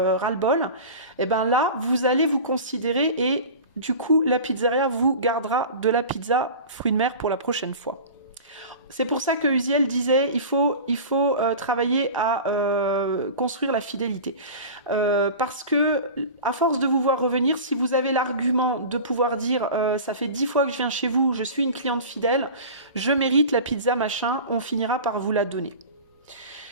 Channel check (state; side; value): inverted; both; correlation -0.35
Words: ras-le-bol, et ben là, vous allez vous considérer et du coup, la pizzeria vous gardera de la pizza fruits de mer pour la prochaine fois. C'est pour ça que Uziel disait il faut travailler à construire la fidélité. Parce que, à force de vous voir revenir, si vous avez l'argument de pouvoir dire ça fait 10 fois que je viens chez vous, je suis une cliente fidèle, je mérite la pizza machin, on finira par vous la donner.